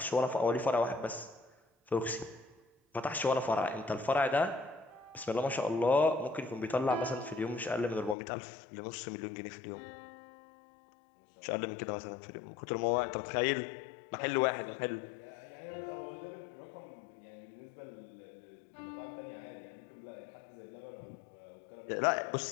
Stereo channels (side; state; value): right; drops out; at 8.2 s